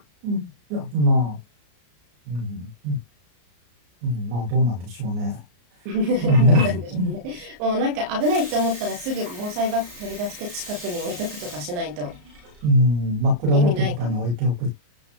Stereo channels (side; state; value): left; late; 34 ms